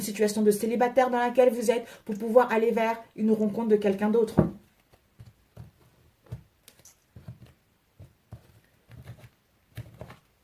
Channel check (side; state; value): both; identical; correlation 1.00